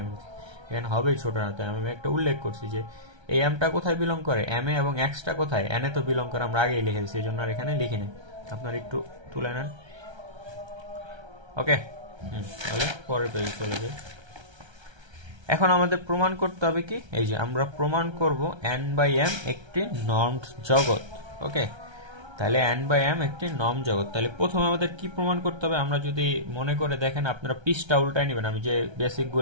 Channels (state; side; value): late; left; 1.3 ms